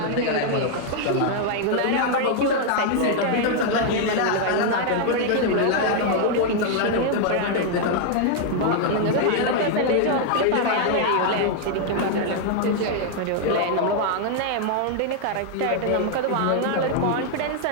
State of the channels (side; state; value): both; different; correlation 0.00